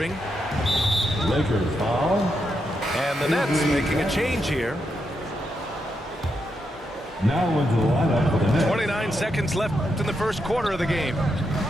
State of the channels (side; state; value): both; normal; correlation 0.83